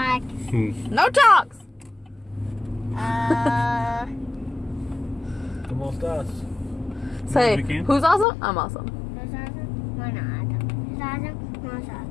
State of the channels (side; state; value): right; drops out; at 8.2 s